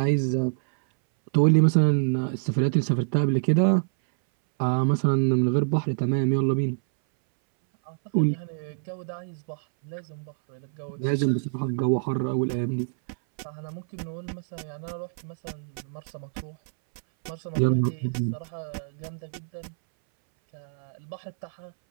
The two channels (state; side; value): silent; left; 61 dB below the other